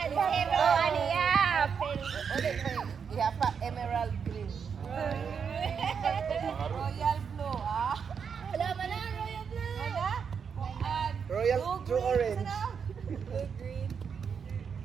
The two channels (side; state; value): left; quieter; 6.6 dB